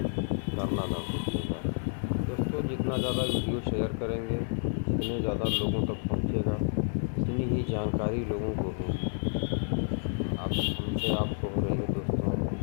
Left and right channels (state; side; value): silent; right; digital silence